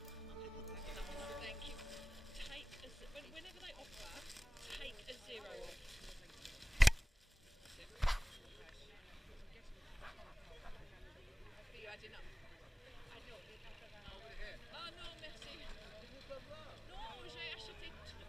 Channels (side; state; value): both; normal; correlation 0.97